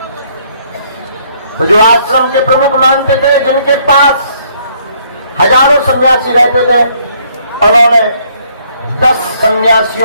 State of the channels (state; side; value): inverted; both; correlation -0.66